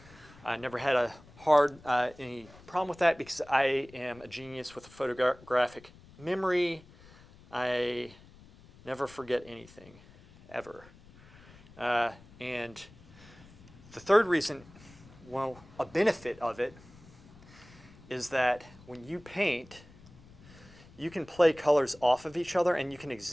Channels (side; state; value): left; noise; rumble, 23 dB below the sound